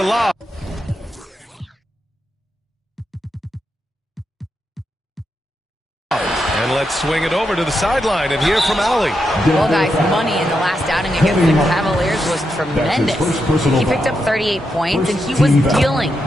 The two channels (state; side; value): normal; both; correlation 0.84